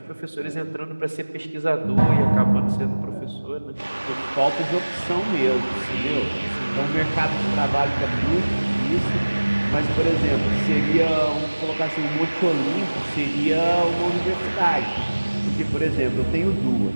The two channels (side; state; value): both; inverted; correlation -1.00